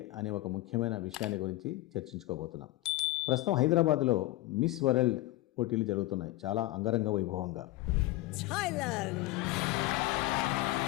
అనే ఒక ముఖ్యమైన విషయాన్ని గురించి చర్చించుకోబోతున్నాం. ప్రస్తుతం హైదరాబాద్లో మిస్ వరల్డ్ పోటీలు జరుగుతున్నాయి చాలా అంగరంగ వైభవంగా.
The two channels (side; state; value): right; quieter; 18.0 dB